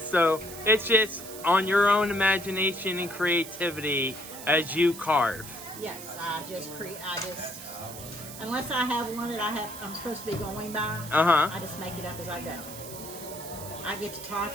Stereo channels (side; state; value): right; noise; hiss, 12 dB below the sound